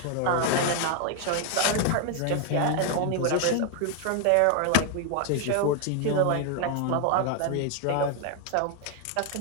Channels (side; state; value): both; different; correlation 0.00